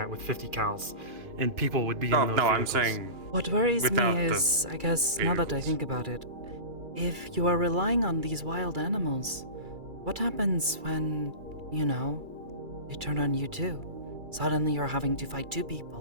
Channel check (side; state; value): left; late; 2.3 ms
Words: with 50 cals, and people would be in those I'm vehicles. saying What worries without me the is, I guess, now that I think about it, if you are relying on these wild animals, what happens when, you know, they turn on you too? Suddenly you're having to fight two